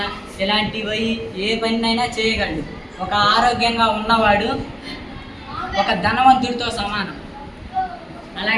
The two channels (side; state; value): both; identical; correlation 1.00